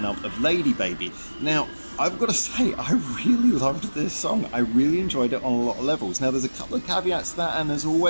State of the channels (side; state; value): both; inverted; correlation -1.00